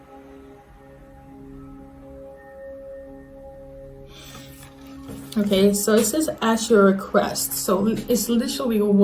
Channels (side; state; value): both; identical; correlation 1.00